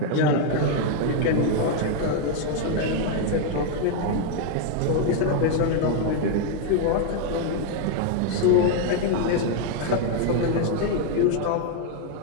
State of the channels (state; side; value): different; both; correlation 0.00